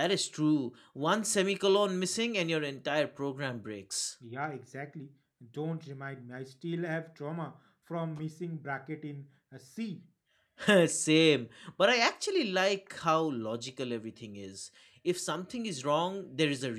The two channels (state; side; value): identical; both; correlation 1.00